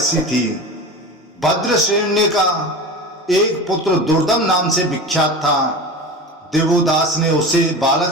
थी। भद्रश्रेणी का एक पुत्र दुर्दम नाम से विख्यात था। देवोदास ने उसे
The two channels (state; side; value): normal; both; correlation 0.30